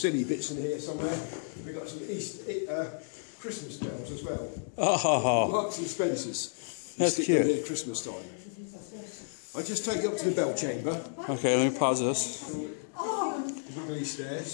bits in here somewhere. We've got some Christmas bells as well. Oh, Marks and Spencer's. That's stick cute. them here at Christmas time. I'll just take you up to the bell chamber. okay, let me pause this. Look at these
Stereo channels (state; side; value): silent; right; digital silence